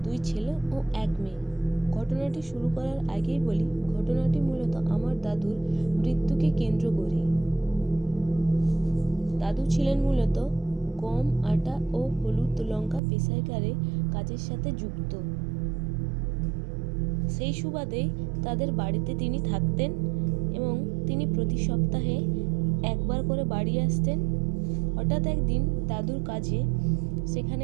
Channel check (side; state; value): left; drops out; at 13.0 s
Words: 2 ছেলে ও 1 মেয়ে। ঘটনাটি শুরু করার আগেই বলি, ঘটনাটি মূলত আমার দাদুর মৃত্যুকে কেন্দ্র করেই। দাদু ছিলেন মূলত গম, আটা ও হলুদ লঙ্কা পেশাইকারে কাজের সাথে যুক্ত। সেই সুবাদে তাদের বাড়িতে তিনি থাকতেন এবং তিনি প্রতি সপ্তাহে একবার করে বাড়ি আসতেন। হঠাৎ একদিন দাদুর কাজে